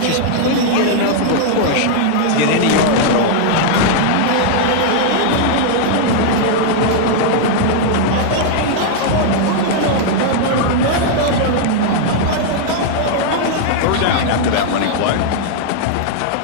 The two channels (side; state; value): both; different; correlation -0.01